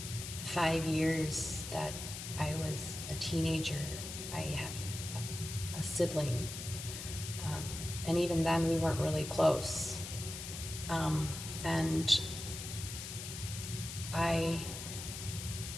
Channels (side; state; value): left; noise; hiss, 8 dB below the sound